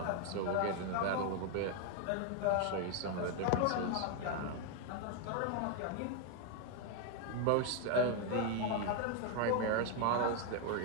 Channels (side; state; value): both; different; correlation 0.01